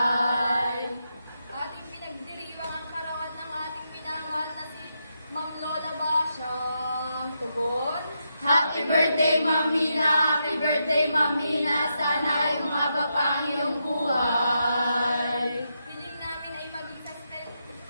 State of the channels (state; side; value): inverted; both; correlation -0.83